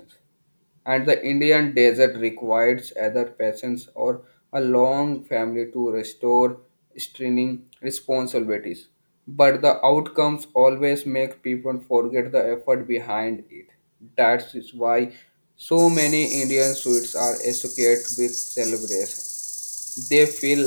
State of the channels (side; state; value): both; inverted; correlation -1.00